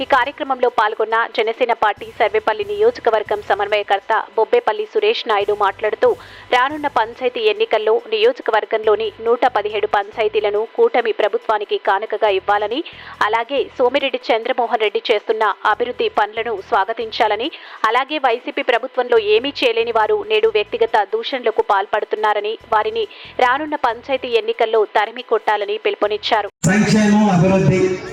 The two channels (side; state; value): both; identical; correlation 1.00